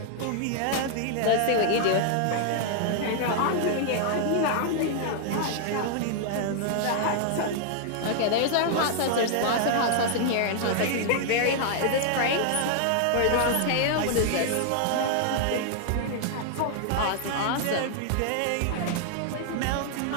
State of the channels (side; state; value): both; different; correlation 0.00